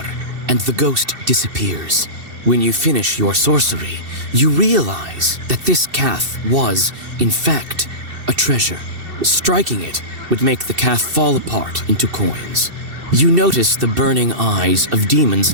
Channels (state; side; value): late; left; 2.7 ms